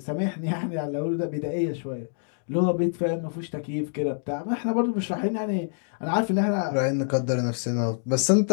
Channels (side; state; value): right; silent; digital silence